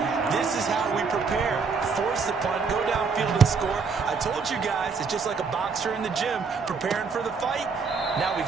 this is how we prepare. Force the punt, go downfield and score. I told you guys, it's just like a boxer in the gym preparing for the fight. Now we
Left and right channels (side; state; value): left; quieter; 5.1 dB